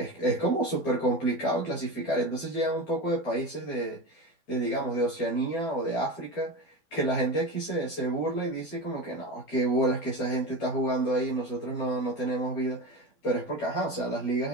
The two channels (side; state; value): right; late; 12 ms